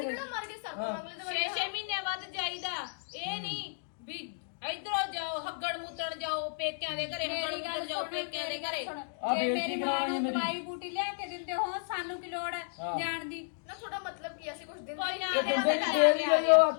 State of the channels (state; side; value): silent; right; digital silence